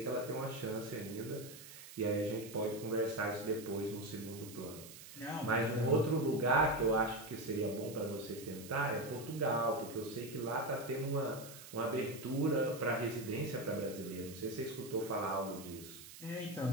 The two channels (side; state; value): right; noise; hiss, 15 dB below the sound